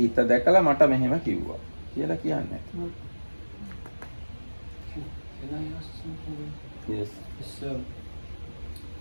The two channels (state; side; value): inverted; both; correlation -1.00